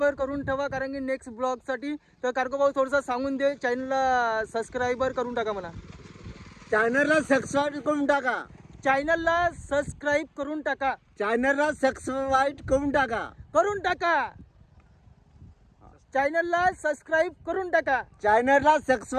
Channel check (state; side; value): identical; both; correlation 1.00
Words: करून ठेवा कारण की नेक्स्ट ब्लॉगसाठी. तर कार्गो भाऊ थोडंसं सांगून दे चॅनलला सबस्क्राईबर करून टाका म्हणा. चॅनलला सबस्क्राईब करून टाका. चॅनलला सबस्क्राईब करून टाका. चॅनलला सबस्क्राईब करून टाका. चॅनलला सबस्क्राईब करून टाका. चॅनलला